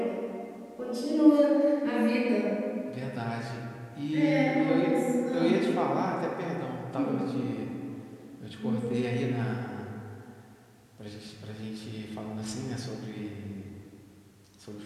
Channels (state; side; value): identical; both; correlation 1.00